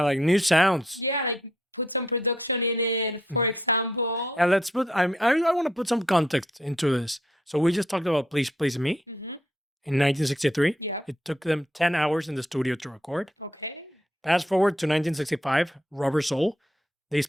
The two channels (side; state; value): both; normal; correlation 0.72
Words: like new sounds. Yeah, like put some production in it, for example. Yeah, let's put. I want to put some context into this. So we just talked about "Please Please Me" in 1963. Yeah. It took them 10 hours in the studio to record. Okay. Fast forward to 1965, Rubber Soul. They